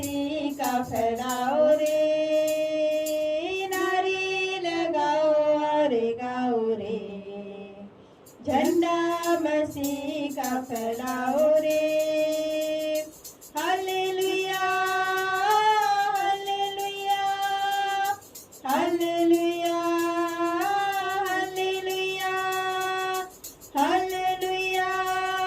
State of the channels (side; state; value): both; identical; correlation 1.00